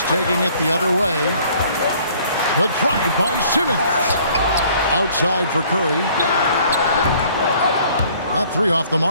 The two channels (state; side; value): inverted; both; correlation -0.57